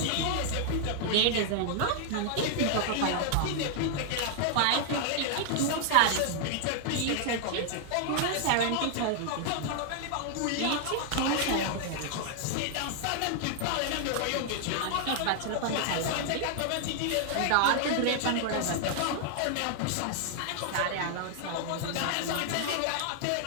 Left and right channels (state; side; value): different; both; correlation 0.00